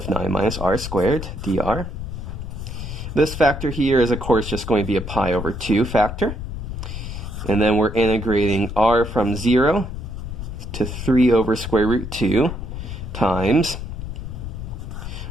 9 minus r squared, dr. This factor here is, of course, just going to be a pi over 2 factor. And then we're integrating r from 0 to 3 over square root 2 times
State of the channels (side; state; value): left; noise; rumble, 7 dB below the sound